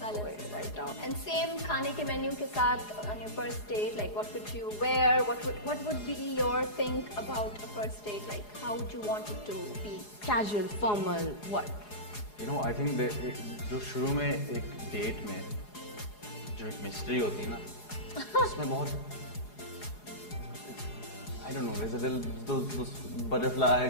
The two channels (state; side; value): late; right; 4.8 ms